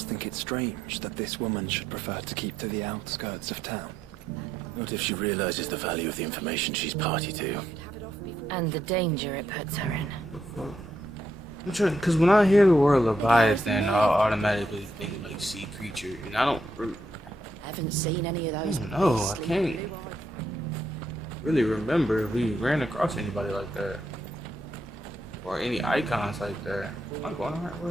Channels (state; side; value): normal; both; correlation 0.78